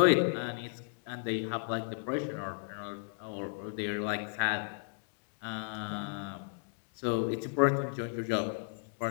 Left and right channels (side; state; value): right; silent; digital silence